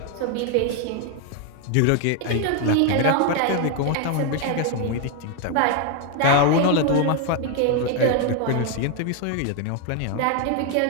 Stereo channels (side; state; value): both; different; correlation 0.01